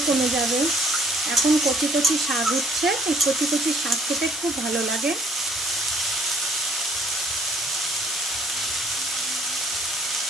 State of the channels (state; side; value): normal; both; correlation 0.60